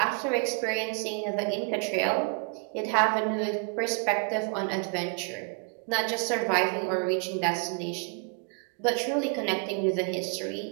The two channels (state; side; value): quieter; left; 39.5 dB